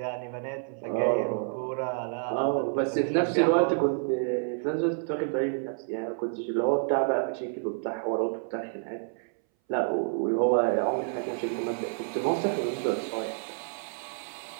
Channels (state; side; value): silent; left; 59 dB below the other